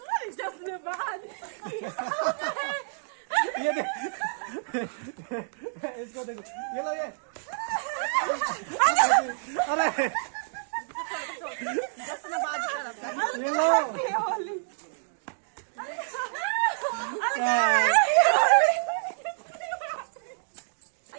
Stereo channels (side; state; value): left; silent; digital silence